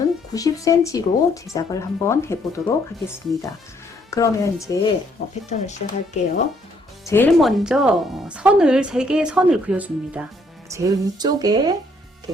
90cm로 제작을 한번 해보도록 하겠습니다. 그러면 이제 패턴을 시작할게요. 제일 먼저 선을 3개의 선을 그려줍니다. 제일 위쪽에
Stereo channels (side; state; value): both; normal; correlation 0.67